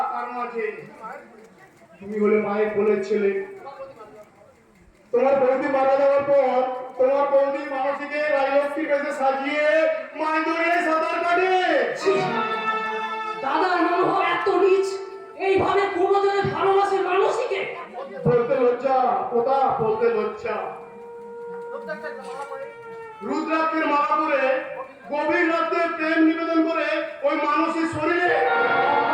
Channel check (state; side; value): identical; both; correlation 1.00